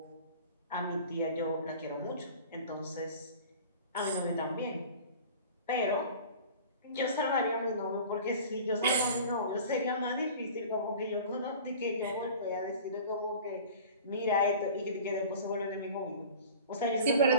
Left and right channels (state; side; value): inverted; both; correlation -0.41